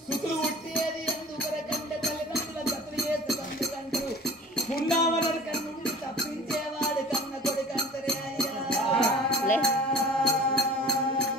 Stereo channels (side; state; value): both; normal; correlation 0.42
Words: సుతులు ఉట్టేది ఎందుకొరకంటే తల్లిదండ్రుల జతలు వేసుకంటూ ఉన్నామని కన్నుండి తప్పించేవాడు కన్న కొడుకంతరే అయ్యా.